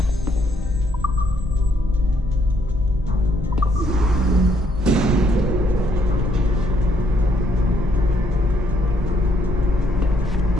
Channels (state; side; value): normal; both; correlation 0.70